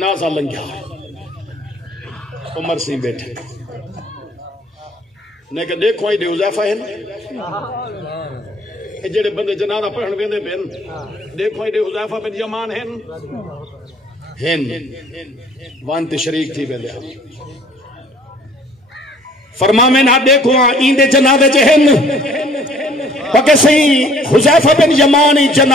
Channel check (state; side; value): normal; both; correlation 0.56